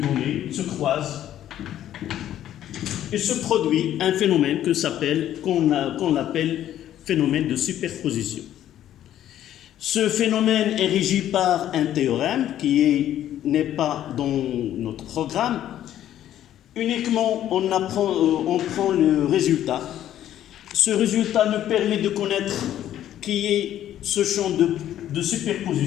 se croisent, et se produit un phénomène qu'on appelle phénomène de superposition. Ce phénomène est régi par un théorème qui n'est pas dans notre programme. Uniquement, on prend le résultat. Ce résultat nous permet de connaître qui est ce champ de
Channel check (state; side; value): quieter; right; 11.7 dB